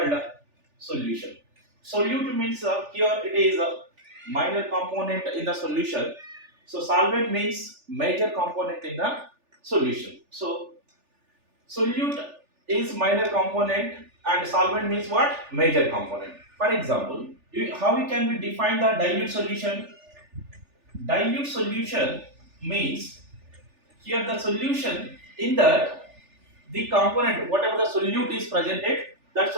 the solution. Solute means here it is a minor component in the solution. So solvent means major component in the solution. So solute is minor component and solvent means what? Major component. For example, how we can we define the dilute solution? Dilute solution means here the solution in that the component whatever the solute is presented, that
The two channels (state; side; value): late; left; 3.4 ms